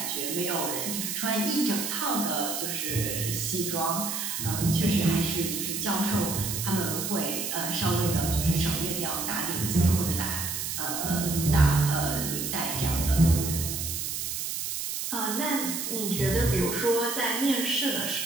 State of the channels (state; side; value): noise; right; hiss, 3 dB below the sound